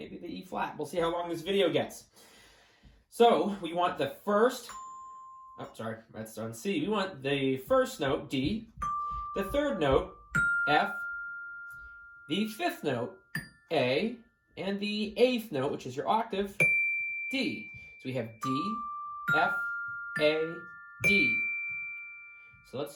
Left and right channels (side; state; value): both; identical; correlation 1.00